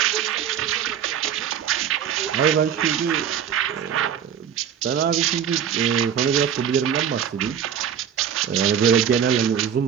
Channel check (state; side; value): quieter; left; 8.6 dB